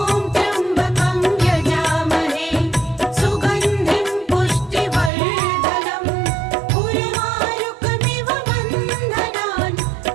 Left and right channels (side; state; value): left; drops out; at 5.1 s